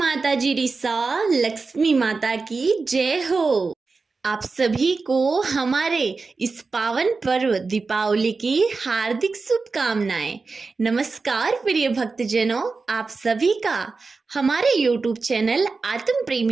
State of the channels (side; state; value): left; quieter; 4.2 dB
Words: जी रिसा, लक्ष्मी माता की जय हो। आप सभी को हमारे इस पावन पर्व दीपावली की हार्दिक शुभकामनाएं। नमस्कार प्रिय भक्तजनों, आप सभी का हमारे YouTube चैनल आत्म